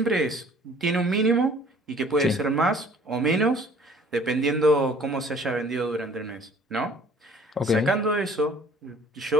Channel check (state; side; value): normal; both; correlation 0.54